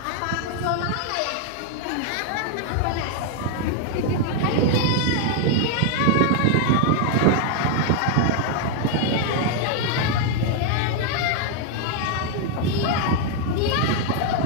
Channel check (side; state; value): both; different; correlation 0.00